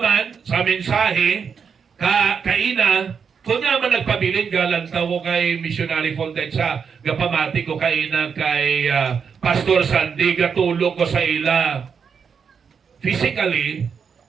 sa mensahe kaina kung naman nagpabilin galang tawo kay missionary Fontaine sa gapamati ko kaina kay Pastor Sandy gatulog ko sa ila physically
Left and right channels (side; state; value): left; quieter; 6.4 dB